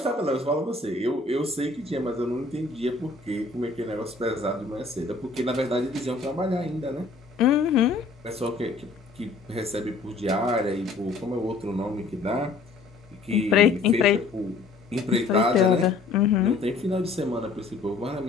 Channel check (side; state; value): right; quieter; 3.9 dB